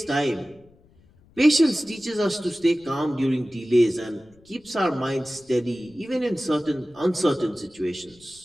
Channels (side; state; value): left; noise; rumble, 29 dB below the sound